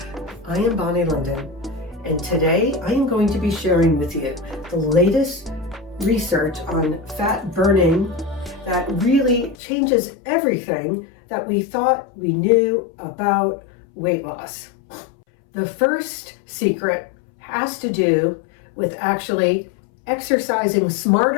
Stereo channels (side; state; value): right; drops out; at 9.6 s